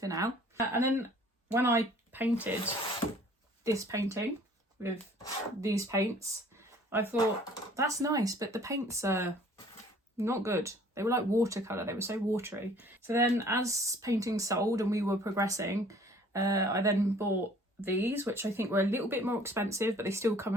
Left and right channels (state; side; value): normal; both; correlation 0.54